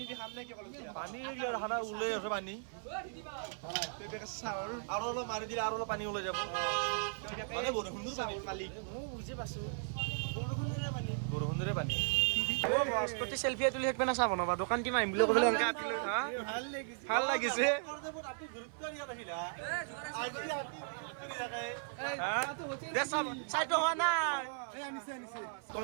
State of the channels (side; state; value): left; silent; 53 dB below the other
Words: দি খাম নে কি পানী ওলাই আছে পানী চাহৰ আৰু অলপ মাৰি দিলে আৰু অলপ পানী ওলাই যাব চাহৰ মালিক মই বুজি পাইছোঁ বৰষুণৰে পানী বৰষুণৰে পানী তই চেলফি তুলি থাকিব না চাহ বনাবা দোকান কিমান আহিম বুলি ক'বলৈ এনেকৈ আপিলৈ ভাল লাগিছে চাহটো হোৱা নাই